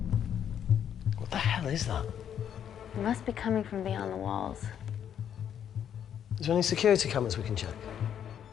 What the hell is that? It must be coming from beyond the walls. Is there any security cameras we can check?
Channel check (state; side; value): quieter; right; 9.2 dB